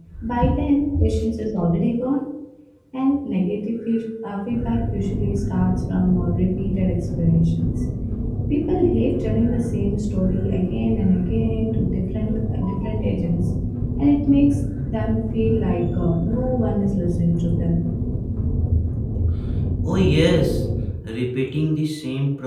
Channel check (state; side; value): identical; both; correlation 1.00